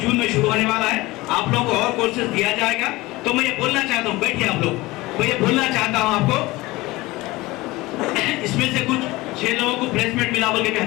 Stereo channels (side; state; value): right; quieter; 20.3 dB